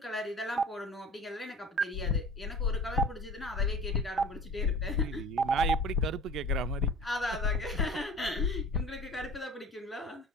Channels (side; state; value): both; normal; correlation 0.41